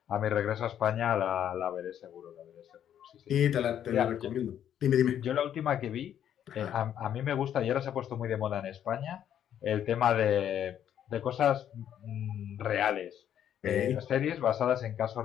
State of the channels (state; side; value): quieter; right; 10.0 dB